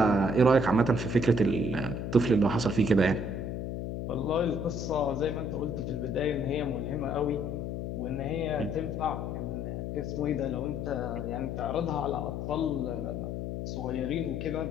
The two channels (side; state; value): left; noise; hum, 4 dB below the sound